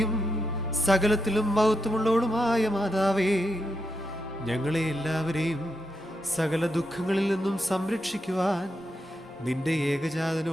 സകലത്തിലും മഹത്വമുള്ളവളുമായ മാതാവേ, ഞങ്ങളെ എല്ലാവരെയും സകല ദുഃഖങ്ങളിൽ നിന്നും സംരക്ഷിക്കുവാൻ നിന്റെ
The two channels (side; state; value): both; normal; correlation 0.85